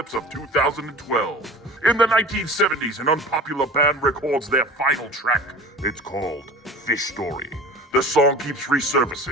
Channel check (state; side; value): normal; both; correlation 0.38